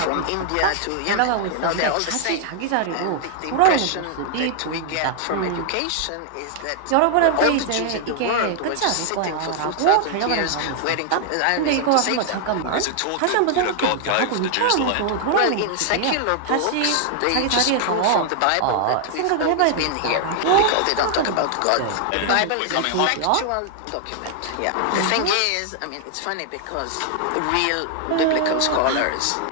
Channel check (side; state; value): both; different; correlation 0.00